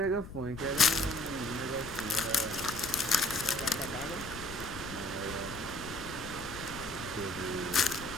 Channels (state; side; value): noise; left; rumble, 13 dB below the sound